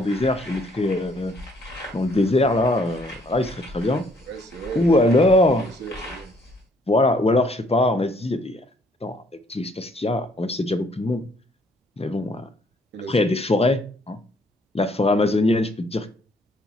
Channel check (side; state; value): both; normal; correlation 0.65